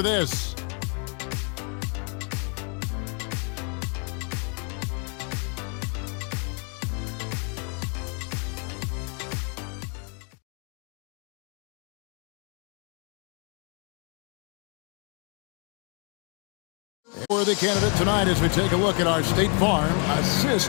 this. For the candidate tonight as we take a look at our State Farm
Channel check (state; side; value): quieter; right; 39.1 dB